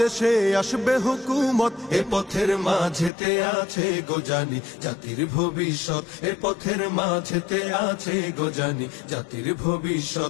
আসবে হুকুমত। এ পথের মাঝেতে আছে গোজানি জাতির ভবিষ্যৎ, এ পথের মাঝেতে আছে গোজানি জাতির ভবিষ্যৎ।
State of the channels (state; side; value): drops out; right; at 3.1 s